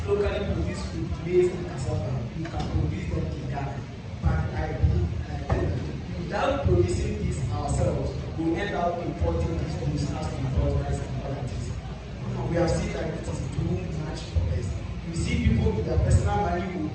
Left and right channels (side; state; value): both; identical; correlation 1.00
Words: locally produced food, maize and cassava, we can produce them in Ghana. But I believe without producing this ourselves, we end up importing these goods as we import rice and other things. We have seen that it is too much for us. You see people with their personal money will